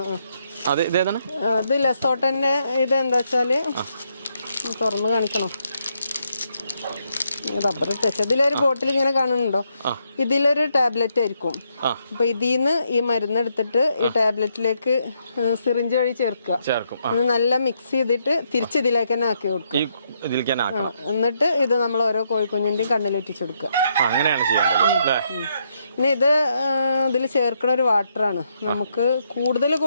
ഇതേതാണ്? അത് ലെസോട്ടന്റെ. ഇത് എന്താ വെച്ചാല് തുറന്ന് കാണിക്കണം. Rubber touch. ഇതിലൊരു ബോട്ടിൽ ഇങ്ങനെ കാണുന്നുണ്ടോ? ഇതിലൊരു ടാബ്ലറ്റ് ആയിരിക്കും. അപ്പൊ ഇതിന്ന് ഈ മരുന്ന് എടുത്തിട്ട് ഈ ടാബ്ലറ്റിലേക്ക് സിറിഞ്ച് വഴി ചേർക്കും. നല്ല മിക്സ് ചെയ്തിട്ട് തിരിച്ച് ഇതിലേക്ക് തന്നെ ആക്കി കൊടുക്കും. എന്നിട്ട് ഇത് നമ്മൾ ഓരോ കോഴിക്കുഞ്ഞിന്റെയും കണ്ണിലെറ്റിച്ചു കൊടുക്കുക. പിന്നെ ഇതിൽ ചേർക്കണ ഒരു വാട്ടറാണ്. നമുക്ക് കൂടുതൽ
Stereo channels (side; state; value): both; inverted; correlation -0.77